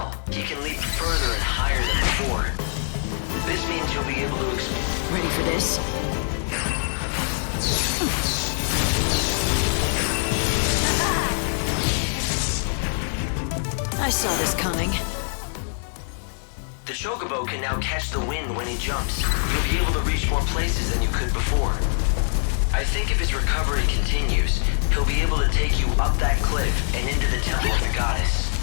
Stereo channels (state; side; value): silent; right; digital silence